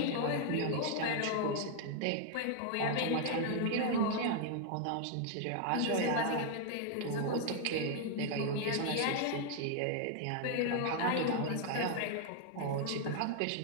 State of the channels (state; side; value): different; both; correlation 0.00